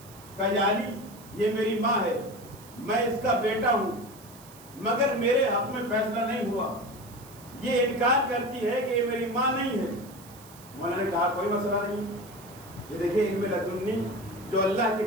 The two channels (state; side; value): noise; right; hiss, 21 dB below the sound